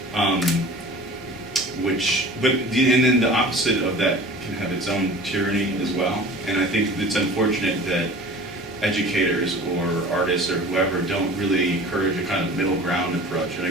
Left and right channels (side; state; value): both; normal; correlation 0.41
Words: and then the opposite of that can have its own tyranny as well. And I think it's unfortunate that educators or artists or whoever don't really encourage a kind of middle ground approach. And I